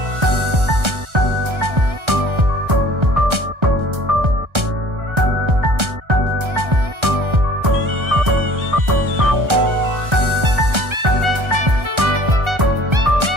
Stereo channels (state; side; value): late; left; 1.3 ms